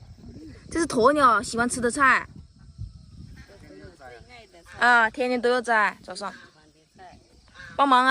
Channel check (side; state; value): both; identical; correlation 1.00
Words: 这是鸵鸟喜欢吃的菜。啊，天天都要摘，早上。帮忙